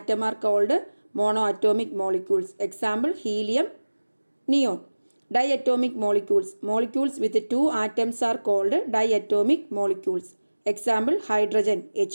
are called mono atomic molecules. Example helium, neon. Diatomic molecules. Molecules with 2 atoms are called diatomic molecules. Example hydrogen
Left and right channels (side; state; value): both; inverted; correlation -1.00